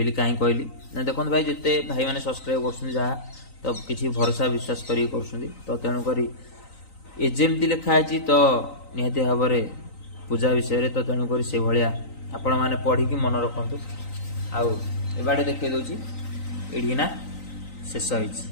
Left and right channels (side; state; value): right; late; 3.9 ms